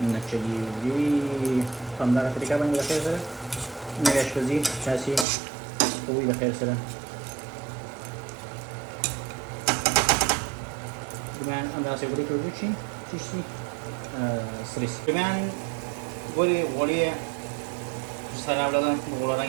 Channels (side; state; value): left; drops out; at 5.2 s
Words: نه چلیږي په همدغه طریقه باندې د خیر سره نوې اشپزي تاسې کوئ د خیر سره رومیان همداسې غوړي کې وچ شي چې شي سره شي رومیان غوړي سره ولاړ غوړ